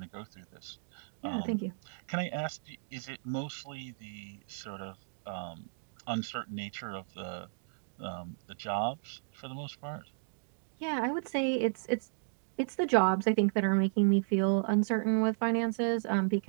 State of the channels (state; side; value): silent; left; digital silence